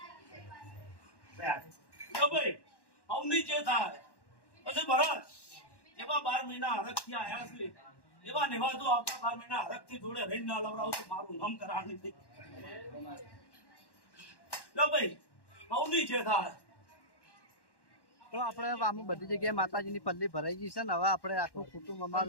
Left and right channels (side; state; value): right; late; 1.1 ms